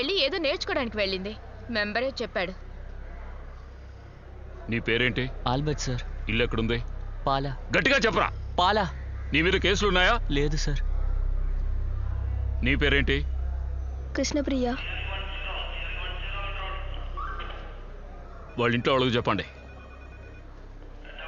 ఏదో నేర్చుకోవడానికి వెళ్ళింది. మెంబరే చెప్పాడు. నీ పేరేంటి? Albert sir. ఇల్లు ఎక్కడుంది? పాలా. గట్టిగా చెప్పరా. పాలా. నీ మీద కేసులు ఉన్నాయా? లేదు సార్. నీ పేరేంటి? కృష్ణప్రియ. వాళ్ళ ఇంట్లో వాళ్ళకి చెప్పండి.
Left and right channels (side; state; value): both; identical; correlation 1.00